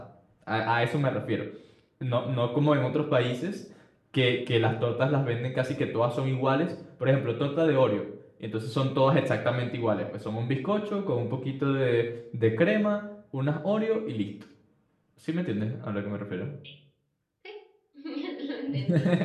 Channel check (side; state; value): both; identical; correlation 1.00